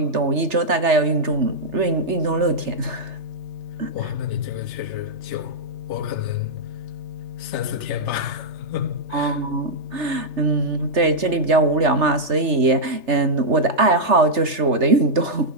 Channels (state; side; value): late; left; 3.3 ms